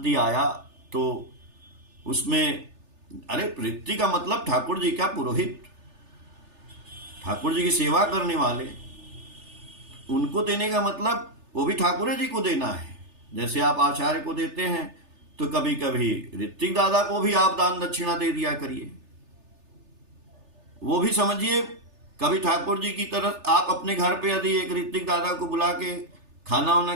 आया, तो उसमें अरे ऋत्विक का मतलब ठाकुर जी का पुरोहित, ठाकुर जी की सेवा करने वाले, उनको देने का मतलब वो भी ठाकुर जी को देना है। जैसे आप आचार्य को देते हैं तो कभी कभी ऋत्विक दादा को भी आप दान दक्षिणा दे दिया करिए। वो भी समझिए कभी ठाकुर जी की तरफ आप अपने घर पे यदि एक ऋत्विक दादा को बुला के खाना वाना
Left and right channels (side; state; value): left; late; 3.4 ms